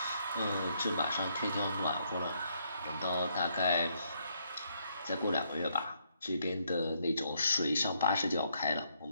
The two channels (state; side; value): inverted; both; correlation -0.73